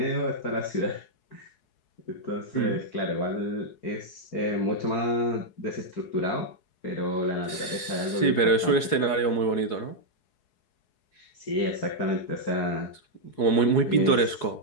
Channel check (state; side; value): late; right; 4.7 ms